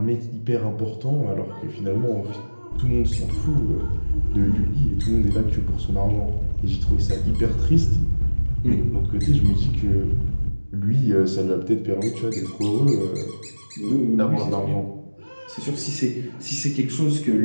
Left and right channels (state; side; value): inverted; both; correlation -1.00